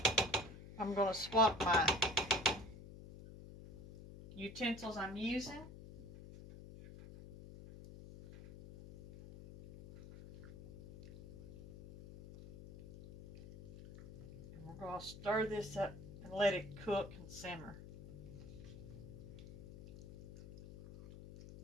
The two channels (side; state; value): left; noise; hum, 14 dB below the sound